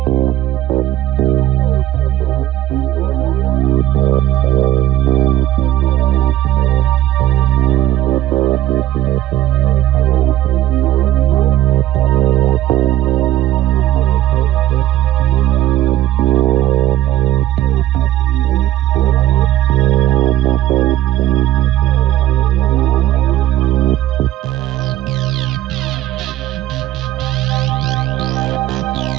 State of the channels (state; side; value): quieter; left; 13.6 dB